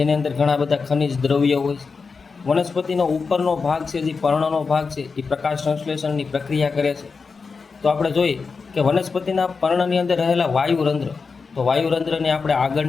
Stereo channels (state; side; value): quieter; right; 4.9 dB